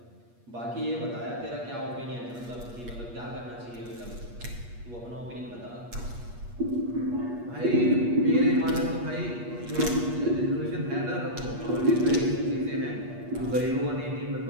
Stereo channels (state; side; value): late; left; 8.4 ms